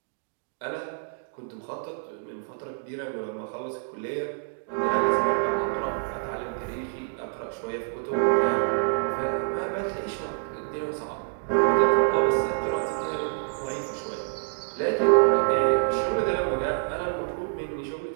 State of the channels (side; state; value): left; silent; digital silence